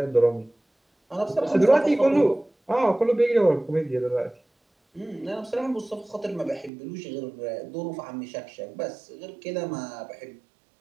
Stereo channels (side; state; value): left; drops out; at 6.7 s